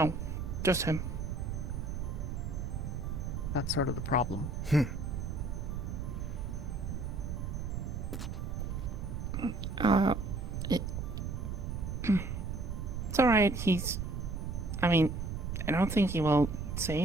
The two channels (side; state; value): right; noise; rumble, 4 dB below the sound